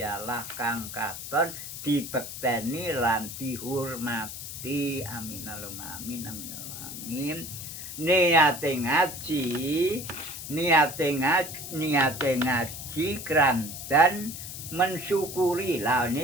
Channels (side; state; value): left; noise; hiss, 9 dB below the sound